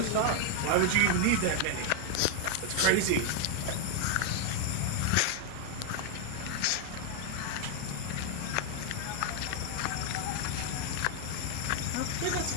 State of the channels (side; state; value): both; different; correlation 0.00